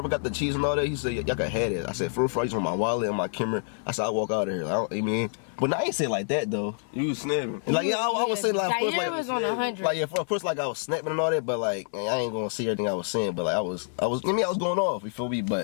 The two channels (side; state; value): right; silent; 60 dB below the other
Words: got the cheese and all that, he said, y'all can have it. I said, for I just want my wallet and my camera. I said, I'll walk out of here. I mean, but I ain't say it like that though. You was snapping. Like, yeah, I was saying like, Zaire was on 100. Like, yeah, of course, like I was snapping and all that, but like, I ain't gonna see everything I was saying, but like, I was going off, you feel me?